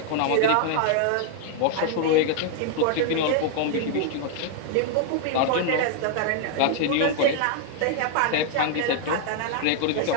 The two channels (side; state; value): both; different; correlation 0.00